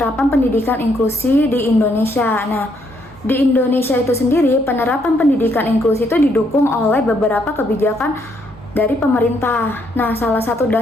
pendidikan inklusi di Indonesia. Nah, di Indonesia itu sendiri penerapan pendidikan inklusi itu didukung oleh beberapa kebijakan dari pemerintah. Nah, salah satu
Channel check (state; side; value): normal; both; correlation 0.72